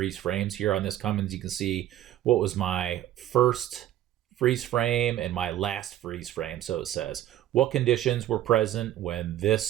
frames. Here on this Cummins, you can see what was my first freeze frame and my last freeze frame. So it says what conditions were present when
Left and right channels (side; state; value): left; quieter; 12.8 dB